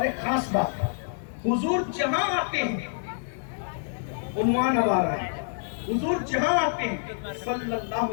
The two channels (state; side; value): silent; right; digital silence